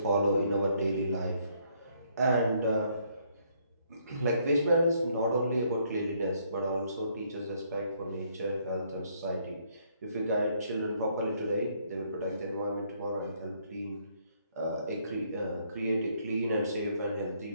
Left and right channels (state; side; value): inverted; both; correlation -0.69